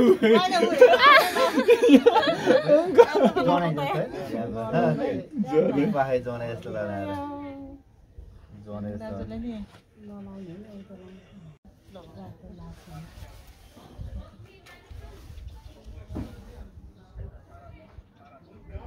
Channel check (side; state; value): both; identical; correlation 1.00